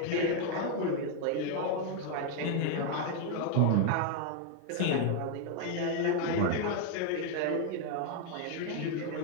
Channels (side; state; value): both; different; correlation 0.01